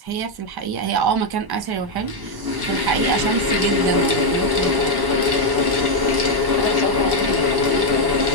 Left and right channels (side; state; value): left; late; 1.1 ms